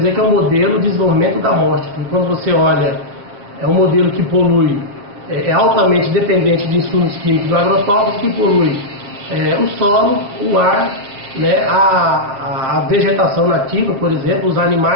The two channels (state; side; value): late; left; 7.7 ms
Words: dizer que é um modelo de desenvolvimento da morte. Porque quando você olha, é um modelo que polui, é altamente dependente de insumos químicos do agrotóxico, que polui o solo, o ar, né, a vegetação nativa, por exemplo, os